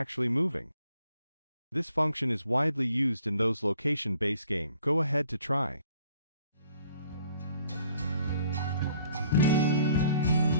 moving. This function is widely used in those location-based games. Go ahead to try.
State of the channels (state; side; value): inverted; both; correlation -0.61